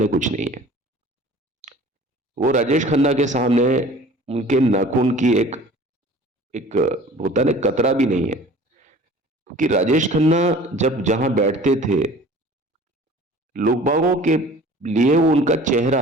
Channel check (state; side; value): normal; both; correlation 0.46